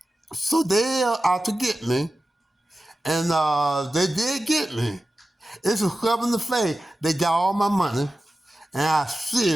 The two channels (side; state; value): both; normal; correlation 0.94